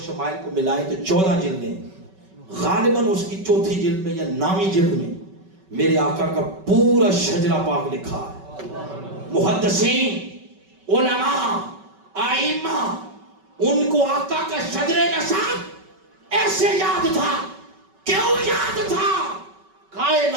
شمائل کو ملائیں تو 14 جلدیں. غالباً اس کی 4تھی جلد میں یا 9ویں جلد میں میرے آقا کا پورا شجرہ پاک لکھا ہے. محدثین، علماء، آئمہ، ان کو آقا کا شجر نسب ایسے یاد تھا. کیوں یاد تھا؟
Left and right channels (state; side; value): late; left; 5.3 ms